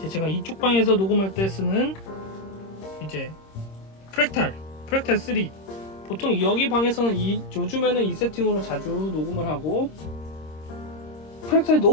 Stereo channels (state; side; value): late; right; 26 ms